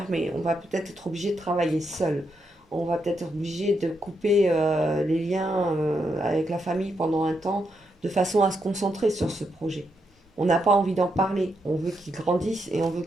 On va peut-être être obligé de travailler seul. On va peut-être être obligé de couper les liens avec la famille pendant un temps de façon à se concentrer sur ce projet. On n'a pas envie d'en parler. On veut qu'il grandisse et on veut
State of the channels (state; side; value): normal; both; correlation 0.81